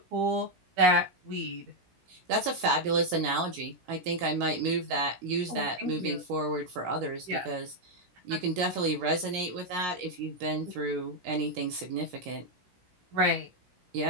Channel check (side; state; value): left; late; 17 ms